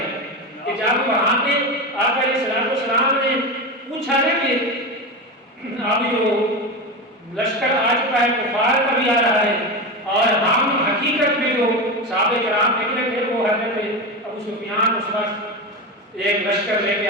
کہ جب وہاں پہ آقا علیہ السلام نے پوچھا ہے کہ اب جو لشکر آ چکا ہے، کفار کا بھی آ رہا ہے، اور ہم حقیقت میں جو صحابہ کرام نکلے تھے وہ حضرت ابو سفیان اس وقت ایک لشکر لے کے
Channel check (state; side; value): normal; both; correlation 0.20